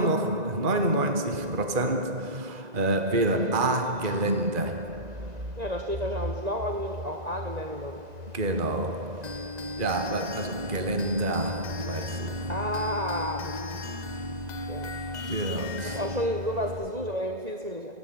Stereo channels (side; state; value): left; late; 2.0 ms